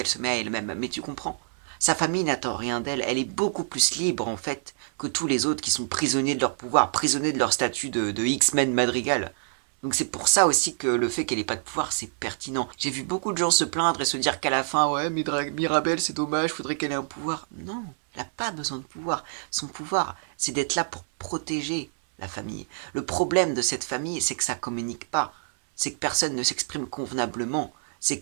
se met à elle-même. Mais tu comprends? Sa famille n'attend rien d'elle. Elle est beaucoup plus libre en fait que tous les autres qui sont prisonniers de leur pouvoir, prisonniers de leur statut de X-Men Madrigal. Donc c'est pour ça aussi que le fait qu'elle ait pas de pouvoir, c'est pertinent. J'ai vu beaucoup de gens se plaindre et se dire qu'à la fin, ouais, Mirabelle, c'est dommage, faudrait qu'elle ait un pouvoir. Non, elle n'a pas besoin de pouvoir. Son pouvoir, c'est d'être là pour protéger la famille. Le problème de cette famille, c'est que ça communique pas. C'est que personne ne s'exprime convenablement. C'est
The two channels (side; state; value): left; silent; 61 dB below the other